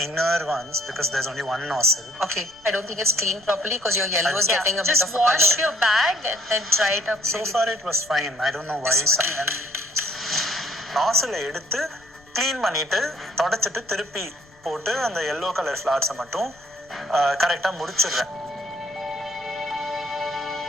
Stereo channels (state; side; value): noise; left; rumble, 29 dB below the sound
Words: inner ones because there's only one nozzle. Okay, I don't think it's cleaned properly because your yellow is getting a bit just of a wash color. your bag and then dry it up. So far it was fine. I don't know why. nozzle எடுத்து க்ளீன் பண்ணிட்டு தொடச்சிட்டு திருப்பி போட்டு அந்த yellow color flowers மட்டும் கரெக்டாக முடிச்சிடுறேன்.